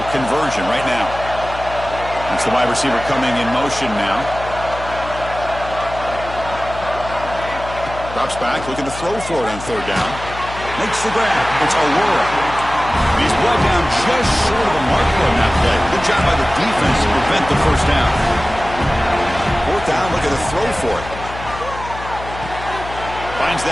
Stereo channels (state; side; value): noise; left; hum, 12 dB below the sound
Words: conversion right now. That's the wide receiver coming in motion now. Drops back, looking to throw for it on 3rd down. Makes the grab. It's Aurora. He's brought down just short of the marker on that play. Good job by the defense to prevent the 1st down. 4th down, looking to throw for it. Finds